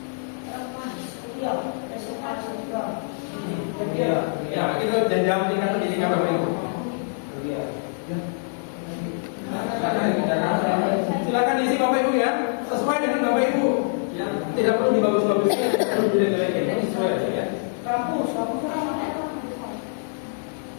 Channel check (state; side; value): silent; right; digital silence